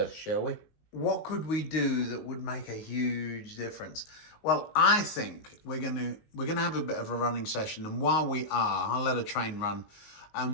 shall we? What could we do that would make a huge difference? Well, I think we're gonna have a bit of a running session, and while we are, I'll let a train run.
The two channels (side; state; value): right; late; 19 ms